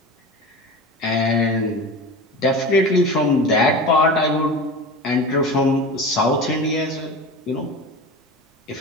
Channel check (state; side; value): normal; both; correlation 0.31